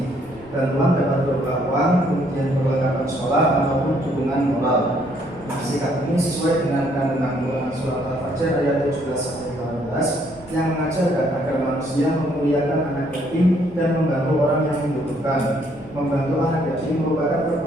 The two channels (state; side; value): noise; left; rumble, 24 dB below the sound